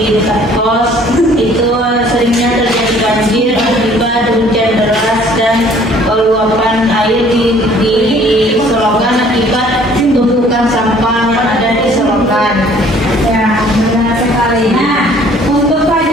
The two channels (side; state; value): both; normal; correlation 0.56